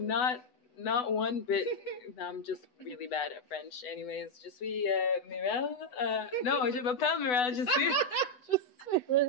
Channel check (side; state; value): right; late; 8.0 ms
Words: not one bit. I'm just really bad at French. Anyways, je suis Mirelle. No, je m'appelle Mirelle. Je suis.